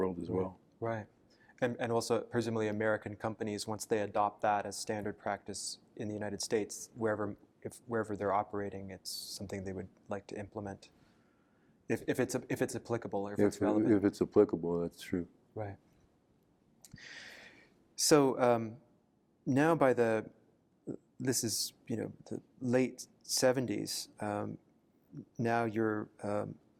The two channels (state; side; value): identical; both; correlation 1.00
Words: as well. Right. And also presumably American companies, once they adopt that as standard practice in the United States, wherever they're operating, it's something they would like to implement. If it's applicable or if it's relevant. If it's applicable, that's true. Right. So now this is the late 70s. Now you're